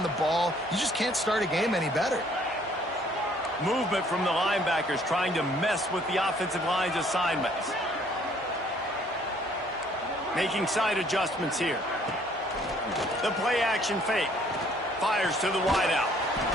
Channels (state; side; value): normal; both; correlation 0.61